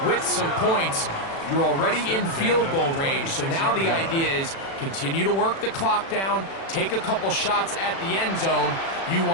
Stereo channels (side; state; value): right; late; 36 ms